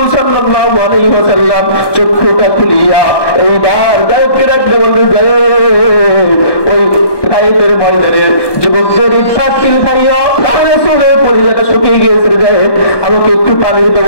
সাল্লাল্লাহু আলাইহি ওয়াসাল্লাম চোখটা খুলিয়া এইবার গায়েবকে ডাকতে বললেন, গায়েব, তাইফের ময়দানের যুবকদের ইফতার খাইয়া রাসূলের পরিজাটা শুকিয়ে গিয়েছে, যায় আমাকে একটু পানির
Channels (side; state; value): right; late; 1.2 ms